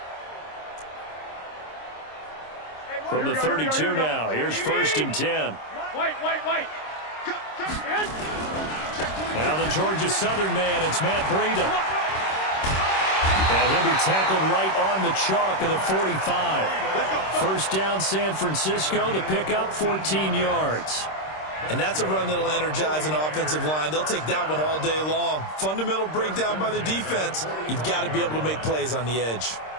From the 32 now, here's first and 10. Wait. Now the Georgia Southern man, it's Matt Breida. And he'll be tackled right on the chalk of the 45. First down, San Francisco. The pickup, 14 yards. And that's a run that'll energize an offensive line. They'll take that one all day long. Fundamental breakdown by the defense. You've got to be able to make plays on the edge.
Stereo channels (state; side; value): late; right; 26 ms